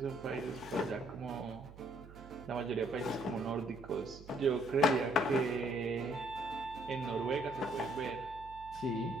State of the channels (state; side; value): noise; right; hum, 17 dB below the sound